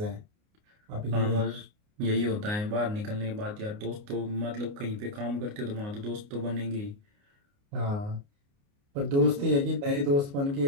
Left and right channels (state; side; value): late; left; 29 ms